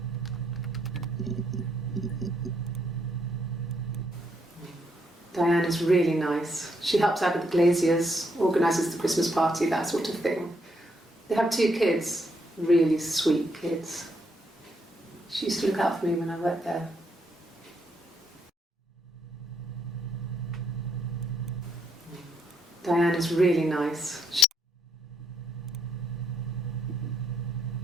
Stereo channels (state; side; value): normal; both; correlation 0.75